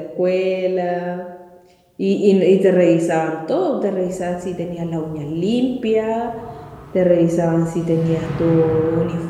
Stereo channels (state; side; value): identical; both; correlation 1.00